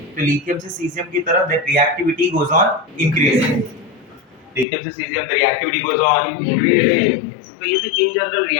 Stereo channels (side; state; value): right; drops out; at 4.7 s